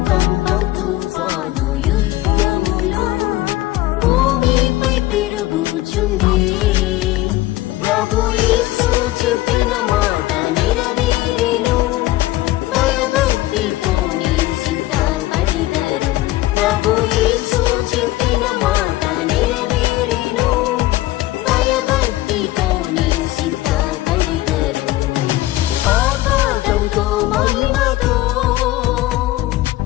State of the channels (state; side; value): quieter; right; 16.7 dB